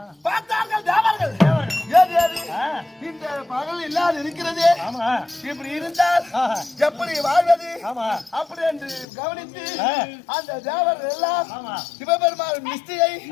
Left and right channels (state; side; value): drops out; right; at 9.1 s